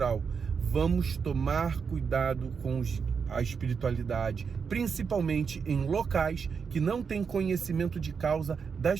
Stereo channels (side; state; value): left; quieter; 6.0 dB